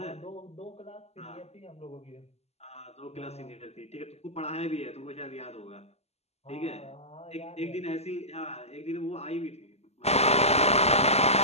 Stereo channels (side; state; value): right; late; 0.30 ms